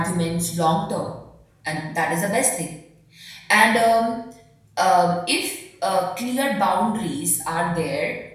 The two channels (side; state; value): both; identical; correlation 1.00